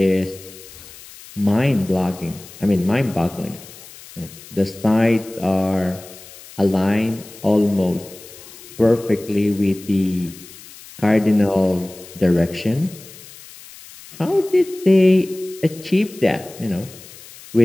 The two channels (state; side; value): noise; left; hiss, 19 dB below the sound